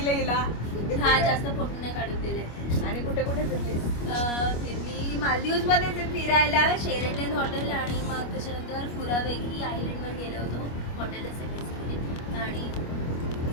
हिला हा जास्त फोटो नाही काढून दिले. आणि कुठे कुठे फिरली फिरली मालदीव्स मध्ये फिरायला शेरेटन हॉटेल आणि मग त्याच्यानंतर फुरावेगी आयलंड वर गेलो होतो हॉटेलला सेकंड आणि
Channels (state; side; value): late; right; 25 ms